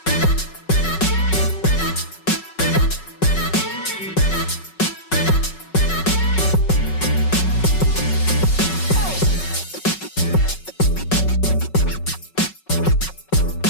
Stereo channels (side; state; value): right; late; 5.4 ms